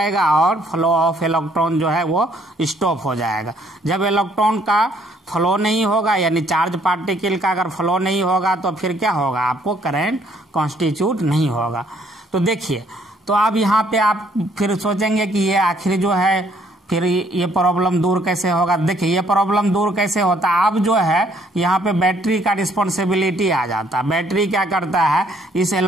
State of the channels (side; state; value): both; normal; correlation 0.65